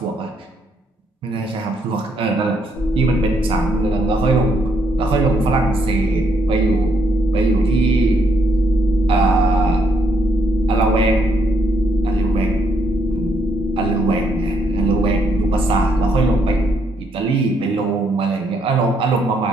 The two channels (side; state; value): both; normal; correlation 0.74